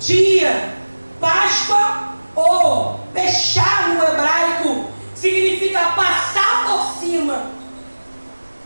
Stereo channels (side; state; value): both; inverted; correlation -1.00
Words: Páscoa, ou fechar no hebraico, significa passar por cima.